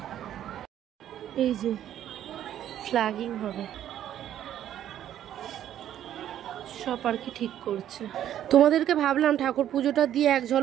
এই যে ফ্ল্যাগিং হবে, সব আর কি ঠিক করছে। তোমাদেরকে ভাবলাম ঠাকুর পুজোটা দিয়ে এক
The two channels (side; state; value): left; quieter; 11.2 dB